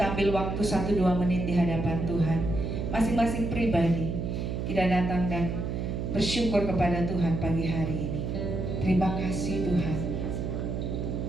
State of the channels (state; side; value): noise; right; hum, 3 dB below the sound